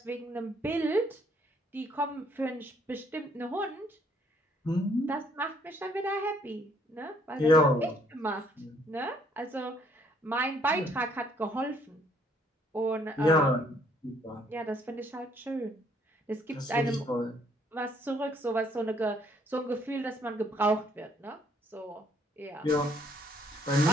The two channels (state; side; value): normal; both; correlation 0.65